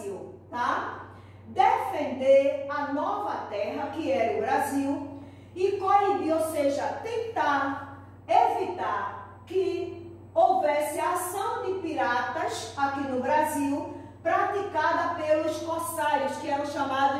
tá? Defender a nova terra, que era o Brasil, e coibir, ou seja, tentar evitar que houvesse ação de piratas aqui no Brasil, praticada pelos corsários, que eram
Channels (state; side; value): identical; both; correlation 1.00